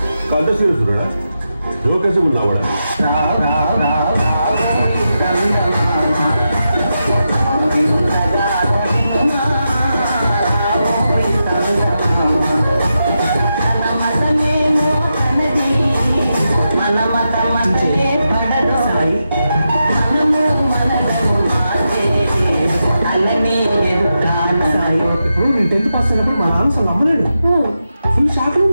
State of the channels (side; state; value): both; inverted; correlation -0.87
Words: కంట సీరియస్డా జోకేసి ఉన్నావా ఇప్పుడు నేను 10th పాస్ అయినప్పుడు మా నాన్న అసలు నమ్మలేడు. ఫుల్ షాక్